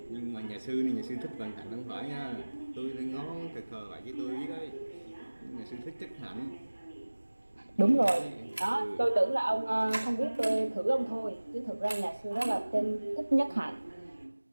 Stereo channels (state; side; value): inverted; both; correlation -1.00